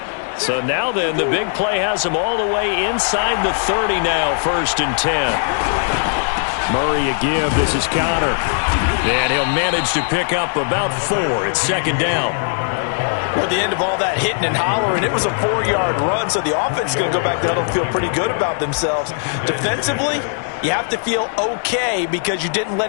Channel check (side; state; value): right; silent; digital silence